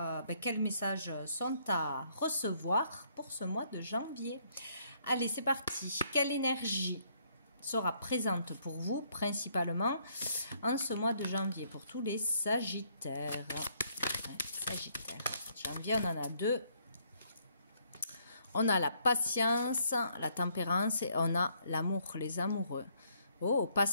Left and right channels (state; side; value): inverted; both; correlation -0.69